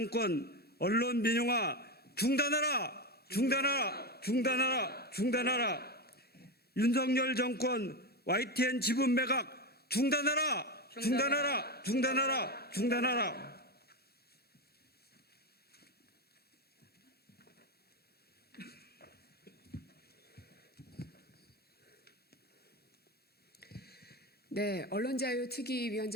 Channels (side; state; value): both; normal; correlation 0.15